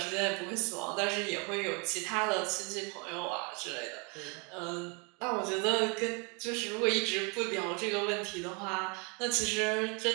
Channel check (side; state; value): left; quieter; 32.4 dB